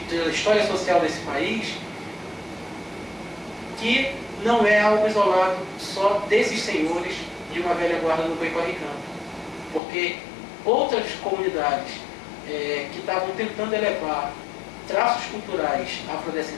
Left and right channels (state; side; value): drops out; right; at 9.8 s